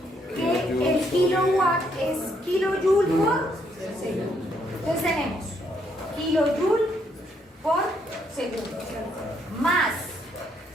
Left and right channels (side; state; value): both; normal; correlation 0.73